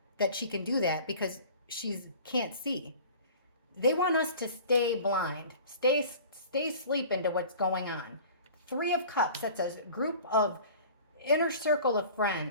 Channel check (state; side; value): inverted; both; correlation -0.43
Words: that she can do that because she can't see. They want us to stay blind, stay asleep into what's going on. Three of Cups, that's a group of inner circle of